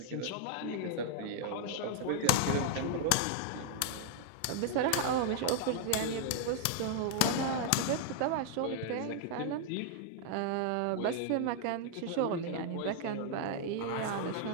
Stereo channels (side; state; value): both; different; correlation 0.00